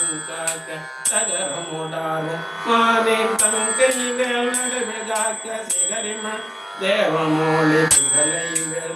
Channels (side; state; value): both; identical; correlation 1.00